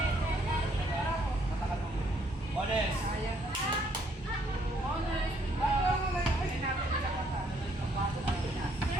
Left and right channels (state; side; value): normal; both; correlation 0.68